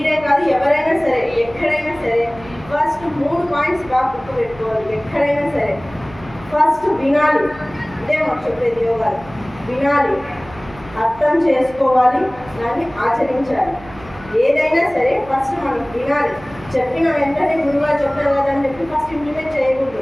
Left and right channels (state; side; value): noise; right; hum, 19 dB below the sound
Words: కాదు ఎవరైనా సరే ఎక్కడైనా సరే ఫస్ట్ 3 పాయింట్స్ బాగా గుర్తు పెట్టుకోవాలి. ఎక్కడైనా సరే ఫస్ట్ వినాలి. ఇదే మాకు చెప్పేది యోగాలు. వినాలి, అర్థం చేసుకోవాలి, దాన్ని ఆచరించాలి. ఏదైనా సరే ఫస్ట్ మనం వినాలి. చెప్పిన వెంటనే గురువుగా చెప్తారు కదా అని చెప్పి ఫస్ట్ ఇంప్లిమెంట్